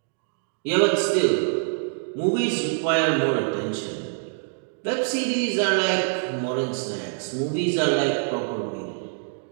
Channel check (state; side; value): silent; left; digital silence